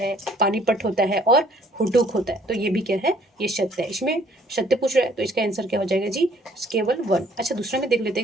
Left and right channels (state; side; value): normal; both; correlation 0.60